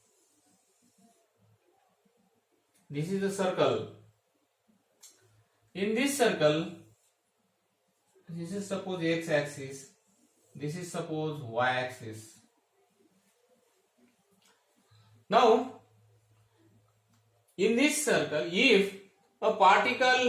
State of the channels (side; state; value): both; identical; correlation 1.00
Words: This is a circle. In this circle, this is suppose x axis, this is suppose y axis. Now, in this circle, if a